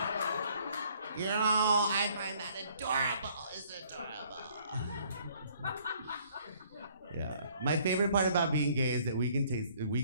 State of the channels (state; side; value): inverted; both; correlation -0.61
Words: you know, I find that adorable. It's adorable. Yeah. My favorite part about being gay is that we can